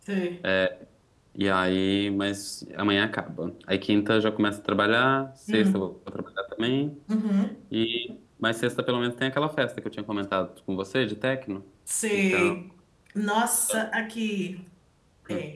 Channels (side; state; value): both; identical; correlation 1.00